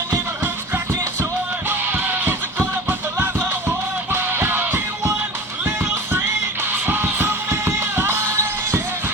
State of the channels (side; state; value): both; normal; correlation 0.35